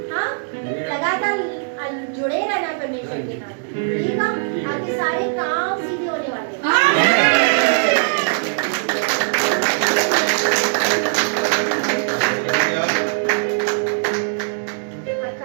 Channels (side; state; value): left; silent; digital silence